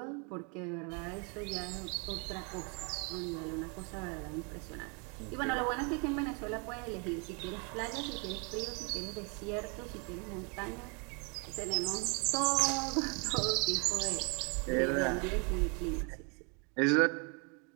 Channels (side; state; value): left; quieter; 34.8 dB